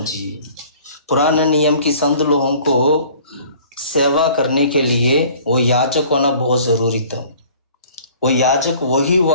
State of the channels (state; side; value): inverted; both; correlation -0.50